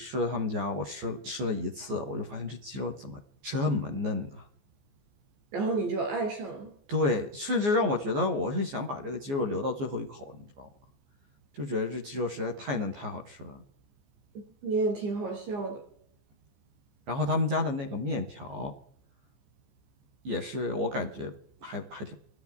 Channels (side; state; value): left; late; 14 ms